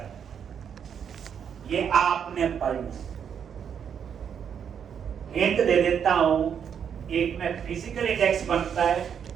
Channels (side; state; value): left; quieter; 7.9 dB